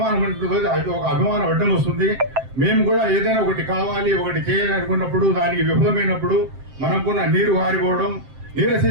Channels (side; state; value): left; late; 7.7 ms